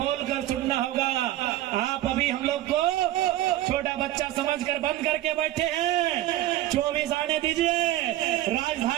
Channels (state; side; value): quieter; left; 14.4 dB